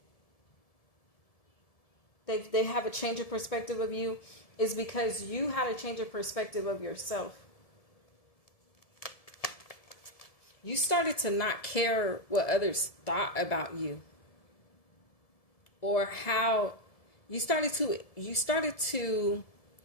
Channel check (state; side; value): late; right; 1.7 ms